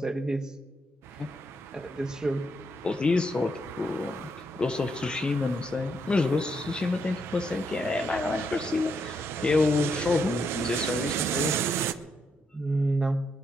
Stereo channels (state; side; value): normal; both; correlation 0.77